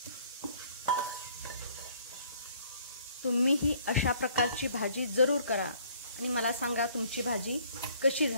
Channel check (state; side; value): inverted; both; correlation -0.59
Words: तुम्ही ही अशा प्रकारची भाजी जरूर करा आणि मला सांगा तुमची भाजी कशी